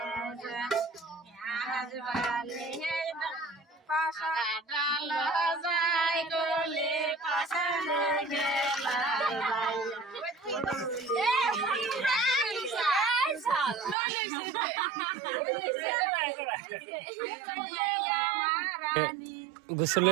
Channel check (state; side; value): drops out; left; at 14.0 s